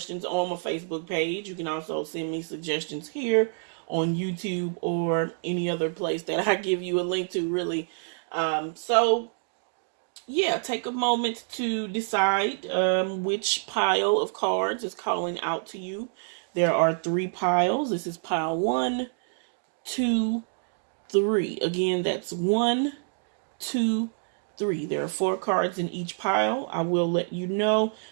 on my Facebook page. You can also send me suggestions here on YouTube or any other place that I give you a link to, really. Take a moment to decide which pile of cards is calling out to you. There are 3 piles. This is pile 1, 2, 3. Again, that's 1, 2, 3. There are 4 cards in each pile. I will let you know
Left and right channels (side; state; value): left; silent; digital silence